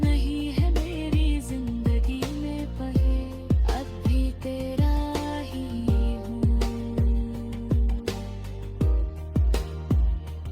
है मेरी जिंदगी में पहे, अब भी तेरा ही हूँ।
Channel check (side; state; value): both; identical; correlation 1.00